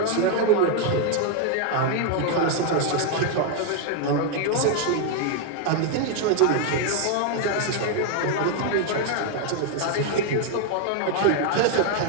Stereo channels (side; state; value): both; different; correlation 0.00